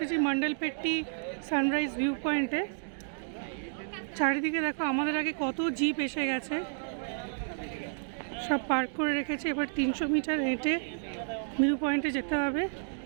মন্ডলপেট্টি সানরাইজ ভিউ পয়েন্টে। চারিদিকে দেখো আমাদের আগে কত জিপ এসে গেছে, সব পার্ক করে রেখেছে। এবার 300 মিটার হেঁটে ভিউ পয়েন্টে যেতে হবে।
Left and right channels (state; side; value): silent; left; digital silence